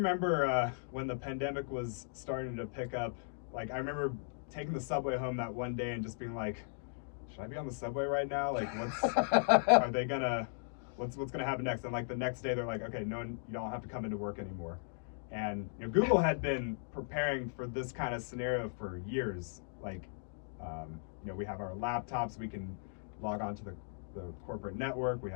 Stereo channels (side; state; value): right; silent; digital silence